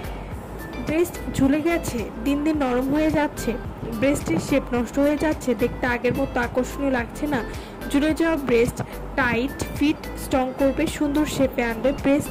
ব্রেস্ট ঝুলে গেছে, দিন দিন নরম হয়ে যাচ্ছে, ব্রেস্টের শেপ নষ্ট হয়ে যাচ্ছে, দেখতে আগের মতো আকর্ষণীয় লাগছে না, ঝুলে যাওয়া ব্রেস্ট টাইট ফিট স্ট্রং করবে, সুন্দর শেপে আনবে,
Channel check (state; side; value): identical; both; correlation 1.00